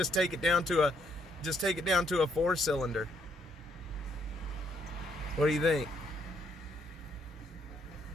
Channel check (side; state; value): both; normal; correlation 0.72